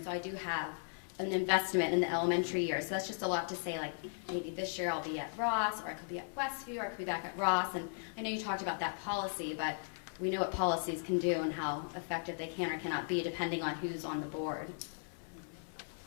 so I do have an investment in the elementary years. So that's just a lot to say, like, maybe this year I'll be at Ross, or I could be at Westview, or I could be back at Ross. And I know you talked about that policy, but we know what policies can do and how effective they can or cannot be depending on who's on the board.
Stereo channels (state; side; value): silent; right; 53 dB below the other